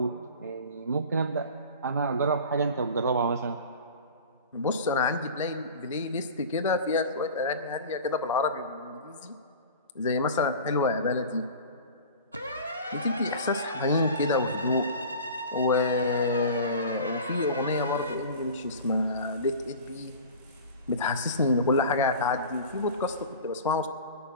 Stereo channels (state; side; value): inverted; both; correlation -0.37